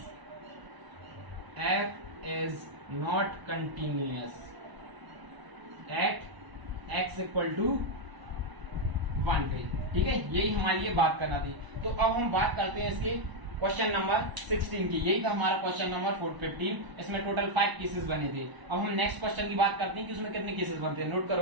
f is not continuous at x equal to 1 पे। ठीक है, यही हमारे लिए बात करना थी। तो अब हम बात करते हैं इसके क्वेश्चन नंबर 16 की। यही था हमारा क्वेश्चन नंबर 15। इसमें टोटल 5 केसेस बने थे। अब हम नेक्स्ट क्वेश्चन की बात करते हैं कि उसमें कितने केसेस बनते हैं। नोट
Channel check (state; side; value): late; left; 1.0 ms